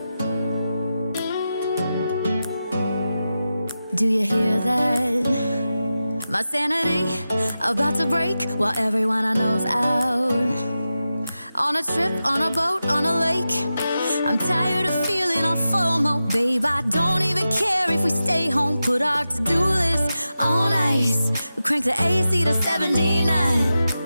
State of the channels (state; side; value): inverted; both; correlation -0.92